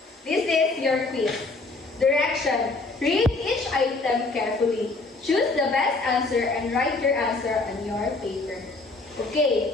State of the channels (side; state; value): right; quieter; 3.4 dB